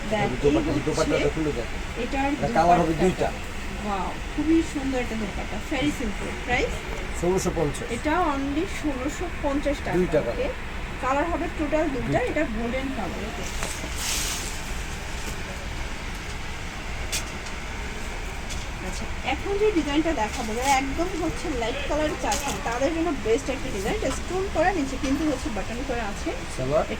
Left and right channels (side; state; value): both; identical; correlation 1.00